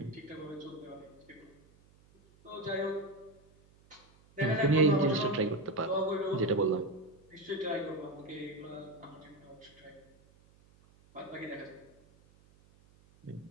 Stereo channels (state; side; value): noise; right; hum, 28 dB below the sound